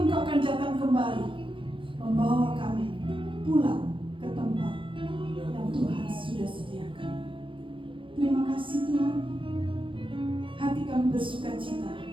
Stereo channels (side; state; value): left; late; 0.25 ms